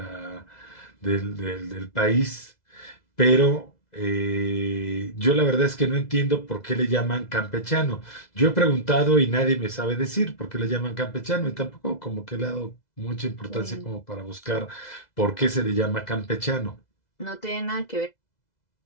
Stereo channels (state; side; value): late; right; 2.0 ms